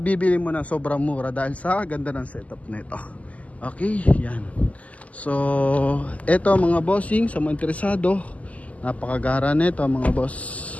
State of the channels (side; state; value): right; late; 0.071 ms